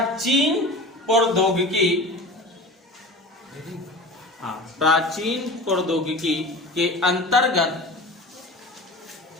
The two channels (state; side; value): normal; both; correlation 0.35